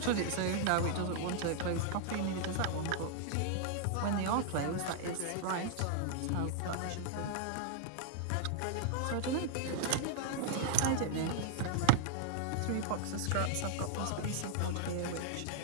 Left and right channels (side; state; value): both; different; correlation -0.01